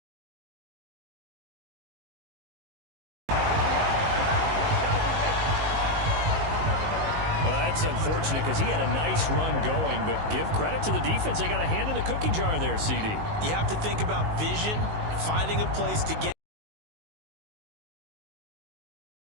That's unfortunate because he had a nice run going, but give credit to the defense. They got a hand in the cookie jar there, CD. You have to think about vision, finding a place to get.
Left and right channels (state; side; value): late; left; 19 ms